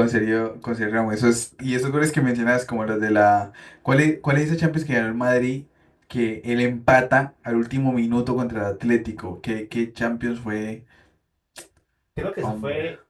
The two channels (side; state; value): both; identical; correlation 1.00